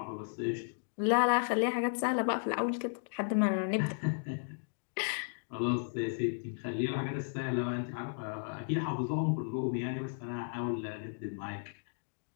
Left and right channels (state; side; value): silent; right; digital silence